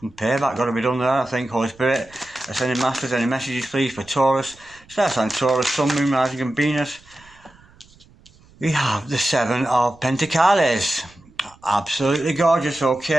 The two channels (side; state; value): right; noise; rumble, 27 dB below the sound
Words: payback got to be done there, I think. Holy Spirit, Ascending Masters, any messages please for Taurus? Starts on Taurus, Sun, Moon, Rising and Venus. We have the Seven of Pentacles. Absolutely gorgeous.